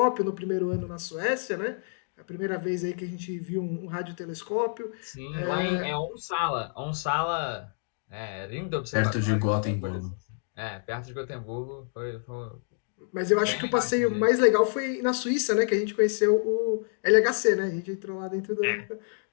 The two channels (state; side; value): silent; right; digital silence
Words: no primeiro ano na Suécia, né? A primeira vez aí que a gente viu um radiotelescópio. Sim, lá em Onsala, lindo observatório. Perto de Gotemburgo. Perto de Gotemburgo. Foi Mas eu acho que o passeio mais legal foi na Suíça, né? Que a gente conheceu o LHC, né? A gente entrou lá dentro do...